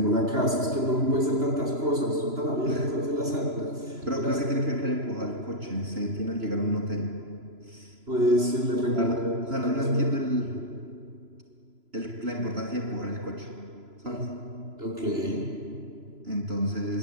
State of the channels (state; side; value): late; left; 3.0 ms